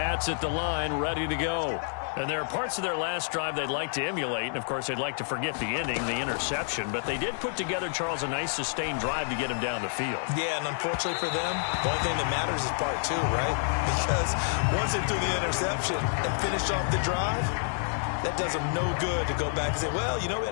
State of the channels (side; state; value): right; silent; digital silence